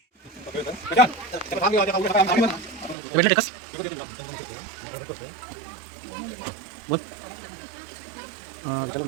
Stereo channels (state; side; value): drops out; left; at 3.0 s